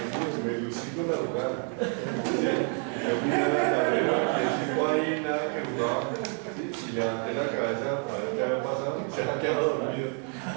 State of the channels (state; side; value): quieter; left; 39.7 dB